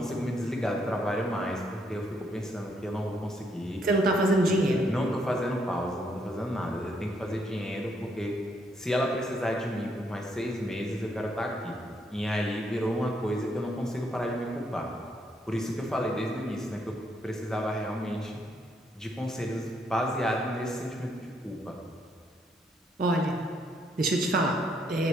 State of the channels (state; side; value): normal; both; correlation 0.73